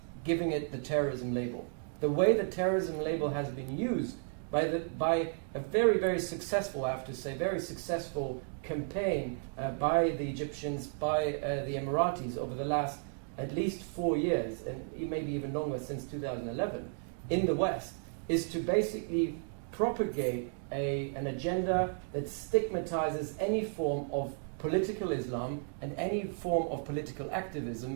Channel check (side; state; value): left; silent; 55 dB below the other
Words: giving it the terrorism label. The way the terrorism label has been used by a very, very successful, I have to say, very successful campaign by the Egyptians, by the Emiratis over the last at least 4 years, and maybe even longer, since 2011, in the West, is to basically propagate an agenda that stigmatizes any form of political Islam and any form of political